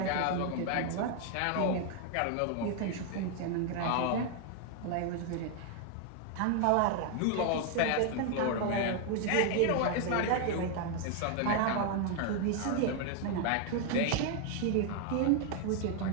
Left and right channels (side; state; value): both; different; correlation 0.00